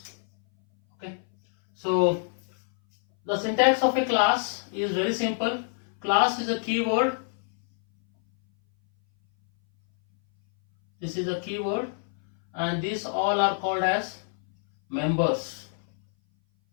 Okay, so the syntax of a class is very simple. Class is a keyword. This is a keyword, and these all are called as members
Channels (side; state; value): right; silent; 58 dB below the other